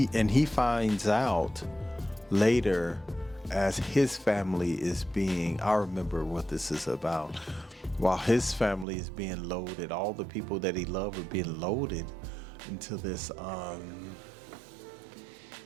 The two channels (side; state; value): left; drops out; at 8.8 s